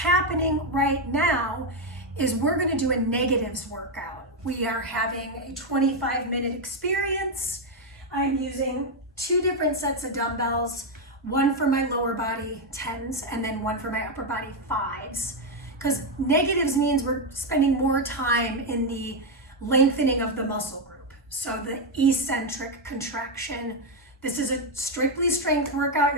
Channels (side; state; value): both; normal; correlation 0.04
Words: right now is we're going to do a negatives workout. We are having a 25-minute experience. I'm using 2 different sets of dumbbells, one for my lower body 10s and then one for my upper body 5s. Because negatives means we're spending more time in the lengthening of the muscle group. So the eccentric contraction. This is a strictly strength workout.